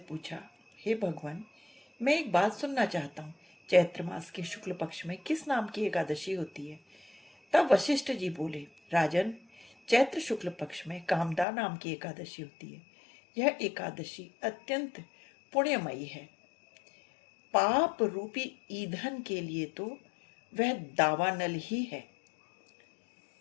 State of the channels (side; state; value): right; drops out; at 11.5 s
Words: हे भगवान, मैं एक बात सुनना चाहता हूँ। चैत्र मास के शुक्ल पक्ष में किस नाम की एकादशी होती है? तब वशिष्ठ जी बोले, राजन, चैत्र शुक्ल पक्ष में कामदा नाम की एकादशी होती है। यह एकादशी अत्यंत पुण्यमयी है। पाप रूपी ईंधन के लिए तो वह दावानल ही है।